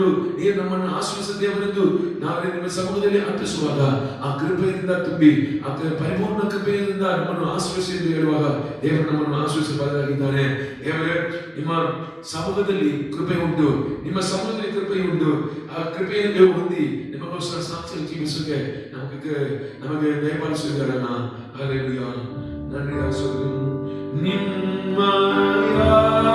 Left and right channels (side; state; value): both; identical; correlation 1.00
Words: ನೀವು ನಮ್ಮನ್ನು ಆಶ್ರಯಿಸಿದ ದೇವರೆಂದು ನಾವು ನಿಮ್ಮ ಸಮ್ಮುಖದಲ್ಲಿ ಅರ್ಪಿಸುವಾಗ ಆ ಕೃಪೆಯಿಂದ ತುಂಬಿ ಆ ಪರಿಪೂರ್ಣ ಕೃಪೆಯಿಂದ ನಮ್ಮನ್ನು ಆಶ್ರಯಿಸಿ ಎಂದು ಹೇಳುವಾಗ ದೇವರು ನಮ್ಮನ್ನು ಆಶ್ರಯಿಸಬಾರದಾಗಿದ್ದಾನೆ. ದೇವರೇ, ನಿಮ್ಮ ಸಮ್ಮುಖದಲ್ಲಿ ಕೃಪೆ ಉಂಟು, ನಿಮ್ಮ ಸಮ್ಮುಖದಲ್ಲಿ ಕೃಪೆ ಉಂಟು. ಆ ಕೃಪೆಯನ್ನು ಹೊಂದಿ ನಿಮಗೋಸ್ಕರ ಸಾಕ್ಷಿ ಜೀವಿಸೋಕೆ ನಮಗೆ ದಯಪಾಲಿಸಿದ್ದಾರಲ್ಲ. ಹಲ್ಲೆಲೂಯಾ. ನನ್ನಿಂದ ನಿಮ್ಮಯ